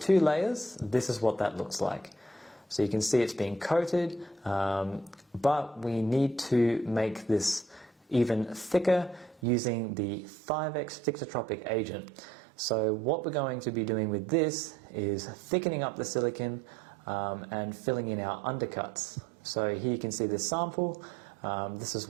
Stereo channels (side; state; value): left; drops out; at 9.4 s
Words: layers, this is what that looks like. So you can see it's being coated, but we need to make this even thicker using the Thivex thixotropic agent. So what we're going to be doing with this is thickening up the silicone and filling in our undercuts. So here you can see this sample. This is